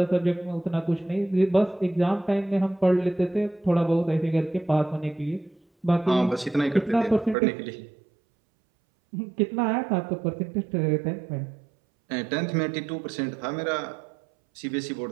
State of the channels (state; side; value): drops out; left; at 7.4 s